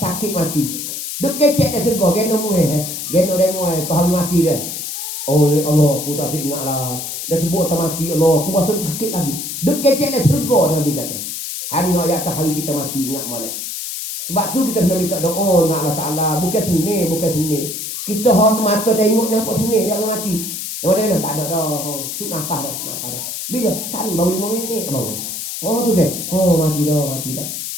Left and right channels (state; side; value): noise; left; hiss, 6 dB below the sound